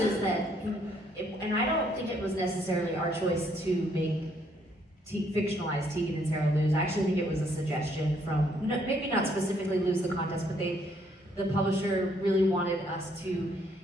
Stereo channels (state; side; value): normal; both; correlation 0.69